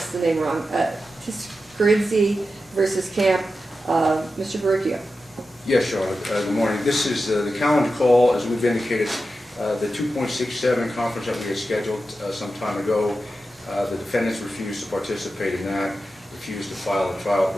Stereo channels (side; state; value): both; normal; correlation 0.91